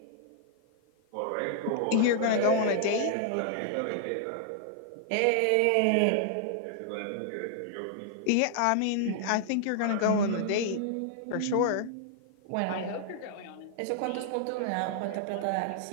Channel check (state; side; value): different; both; correlation -0.01